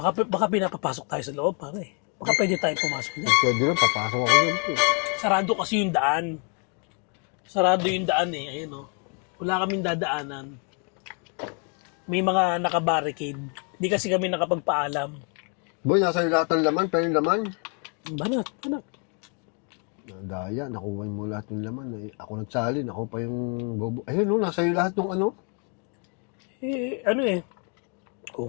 Baka pinapapasok tayo sa loob, pare. Baka pwede tayong pumasok niya. Pwede lang, papasok ako dyan, boy. Sarado kasi yung daan. Sarado yung daan eh. Ayun, oh. Wala kaming dadaanan. May mga nakabarricade. Hindi kasi kami nakapagpaalam. Boy, nasa iyo lahat ng laman, pero yung laman. Banat. Daya, nakuha mo lahat ng laman. Eh, ako nagsalin, ako pa yung bobo. Ayun, no, nasa iyo lahat ng ano. Eh, ano eh. Kung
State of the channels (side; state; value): right; quieter; 39.1 dB